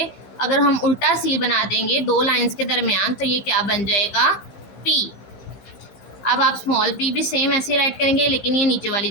अगर हम उल्टा सी बना देंगे दो लाइंस के दरमियान, तो ये क्या बन जाएगा पी। अब आप स्मॉल पी भी सेम ऐसे राइट करेंगे, लेकिन ये नीचे वाली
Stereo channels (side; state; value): right; late; 15 ms